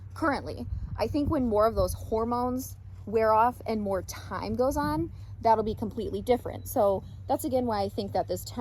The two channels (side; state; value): both; identical; correlation 1.00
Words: currently. I think when more of those hormones wear off and more time goes on, that'll be completely different. So that's again why I think that this